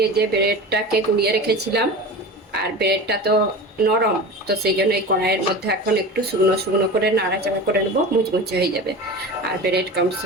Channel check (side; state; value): both; normal; correlation 0.31